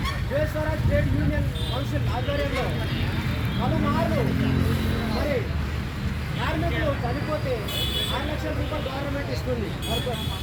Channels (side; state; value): both; identical; correlation 1.00